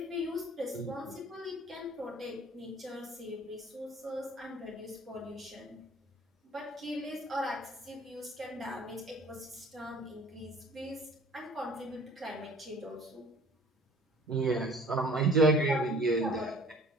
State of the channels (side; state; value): both; normal; correlation 0.50